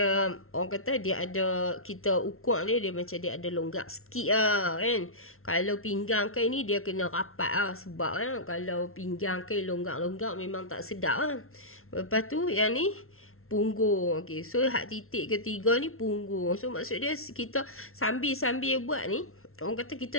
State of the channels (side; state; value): right; late; 0.62 ms